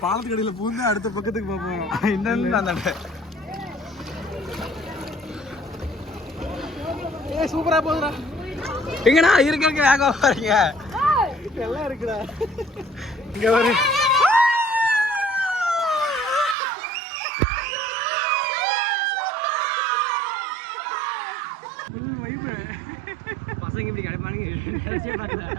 பாலத்துக்கு அடியில பூந்து அடுத்த பக்கத்துக்கு போவோம். இந்த சூப்பரா போகுதுடா. எங்கடா இருக்க வேக போறீங்க? எல்லாம் இருக்குடா. இங்க வரு. பசங்க இப்படி கிடைப்பானுங்க.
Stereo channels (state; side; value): drops out; left; at 16.6 s